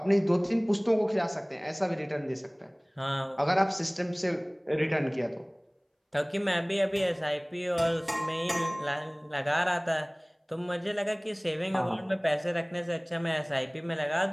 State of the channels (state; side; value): identical; both; correlation 1.00